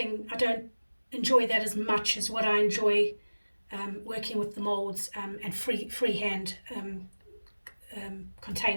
I don't enjoy that as much as what I enjoy working with the molds and freehand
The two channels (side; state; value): both; inverted; correlation -1.00